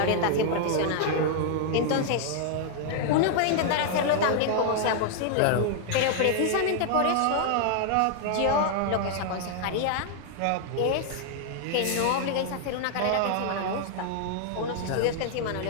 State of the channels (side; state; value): both; different; correlation 0.00